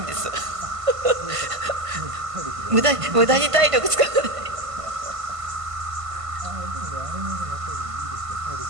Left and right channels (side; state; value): left; late; 1.5 ms